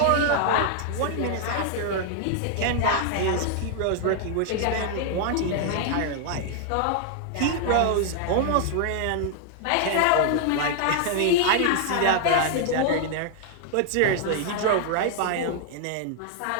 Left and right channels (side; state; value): both; different; correlation 0.00